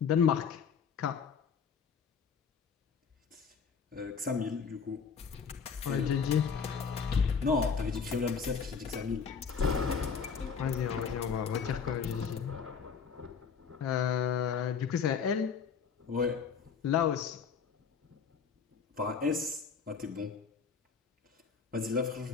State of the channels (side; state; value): right; quieter; 6.2 dB